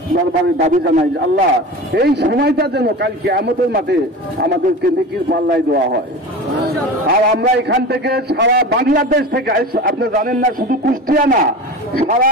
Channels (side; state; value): both; normal; correlation 0.31